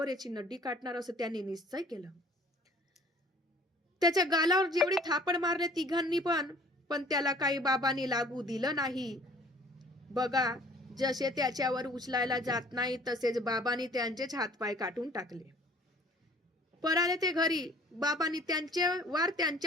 याची नड्डी काटणार, असं त्यांनी निश्चय केलं. त्याच्या गालावर जेवढे थापड मारले तिघांनी पण त्याला काही बाबांनी लागू दिलं नाही. बघा जसे त्याच्यावर उचलायला जात नाही तसेच बाबांनी त्यांचेच हातपाय काटून टाकले. पळाले ते घरी. बाबांनी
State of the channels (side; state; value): both; normal; correlation 0.53